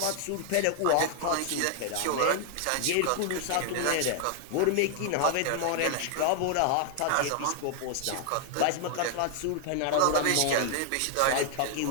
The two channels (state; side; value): different; both; correlation 0.00